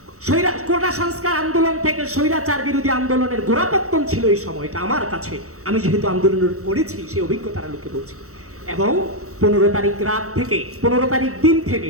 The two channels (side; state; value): left; late; 0.64 ms